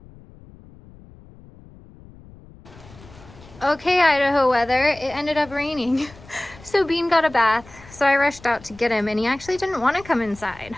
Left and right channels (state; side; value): noise; left; rumble, 22 dB below the sound